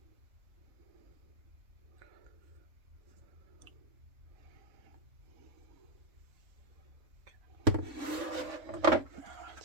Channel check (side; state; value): left; late; 3.5 ms